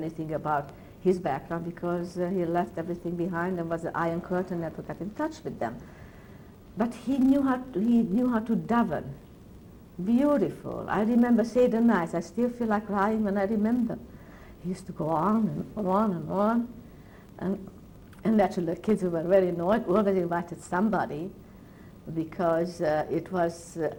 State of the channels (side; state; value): both; identical; correlation 1.00